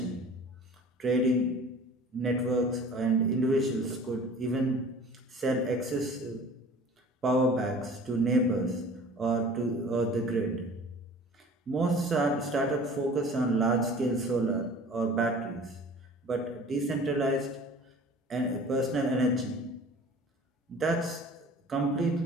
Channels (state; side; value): normal; both; correlation 0.45